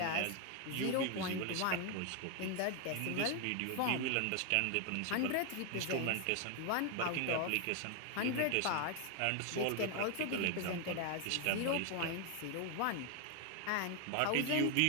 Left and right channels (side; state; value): both; different; correlation 0.01